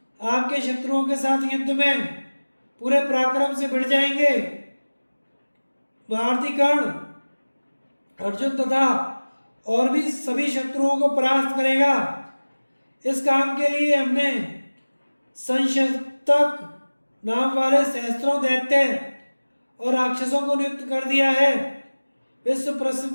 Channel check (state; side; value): inverted; both; correlation -1.00